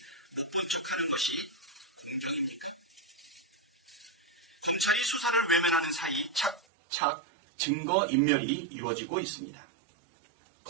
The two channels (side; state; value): left; drops out; at 6.6 s